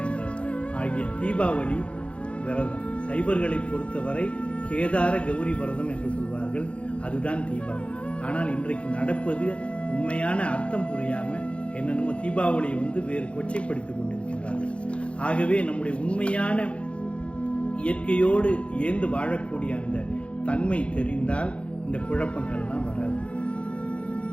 என்ற ஆகிய தீபாவளி விரதம். சைவர்களை பொறுத்தவரை கேதார கௌரி விரதம் என்று சொல்வார்கள், அதுதான் தீபாவளி. ஆனால் இன்றைக்கு நடப்பது உண்மையான அர்த்தம் புரியாம என்னென்னமோ தீபாவளியை வேறு கொச்சைப்படுத்திக் கொண்டிருக்கிறார்கள். ஆகவே நம்முடைய உண்மையான இயற்கையோடு ஏந்து வாழக்கூடிய அந்த தன்மை தெரிந்தால் இந்த குழப்பங்கள்லாம் வராது.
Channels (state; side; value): late; right; 0.060 ms